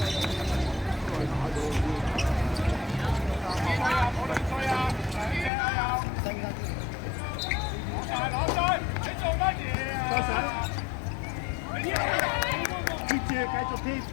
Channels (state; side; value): drops out; right; at 5.5 s